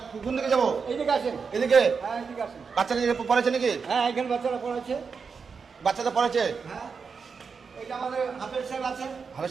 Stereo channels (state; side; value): quieter; left; 5.5 dB